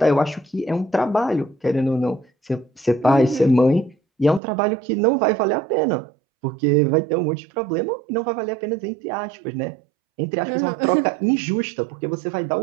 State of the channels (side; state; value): left; drops out; at 4.4 s